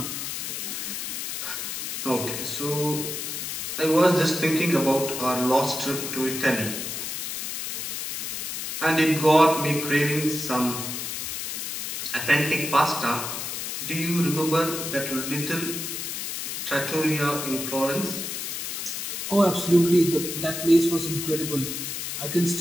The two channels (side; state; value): left; noise; hiss, 4 dB below the sound